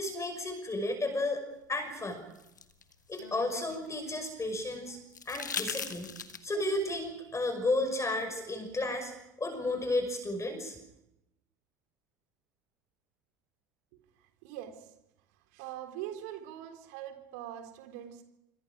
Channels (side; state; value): both; normal; correlation 0.55